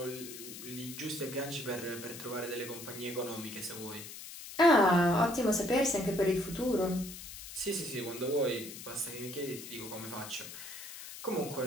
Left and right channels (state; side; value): noise; left; hiss, 12 dB below the sound